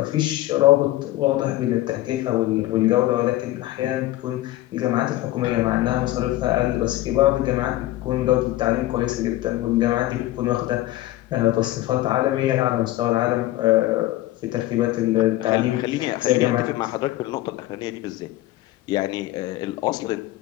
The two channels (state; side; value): quieter; right; 16.2 dB